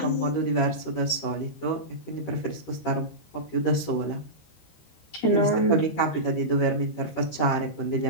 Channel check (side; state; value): right; late; 13 ms